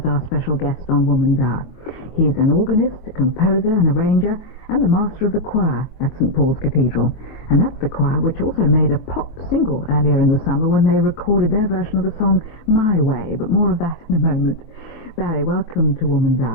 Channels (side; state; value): right; late; 23 ms